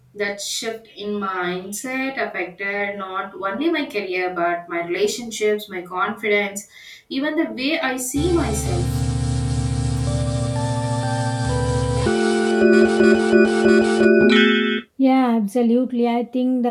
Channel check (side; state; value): both; identical; correlation 1.00